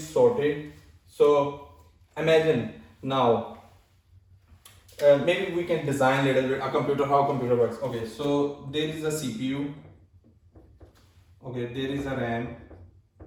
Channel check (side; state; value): both; identical; correlation 1.00